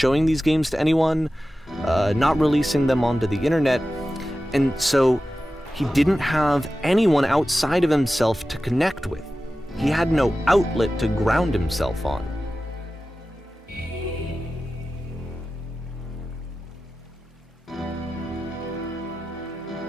these games to anyone, not releasing them onto the internet, and so he didn't have anyone outside of himself to connect with. He had no outlet to ground himself on.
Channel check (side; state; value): both; normal; correlation 0.94